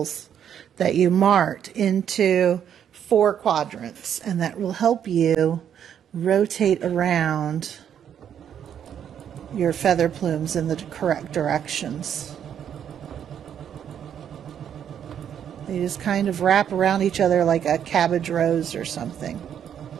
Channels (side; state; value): left; quieter; 9.0 dB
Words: that you marked into 4 quadrants, and that will help you rotate around your feather plumes in the correct directions. They just kind of wrap around each other like a cabbage rose or something.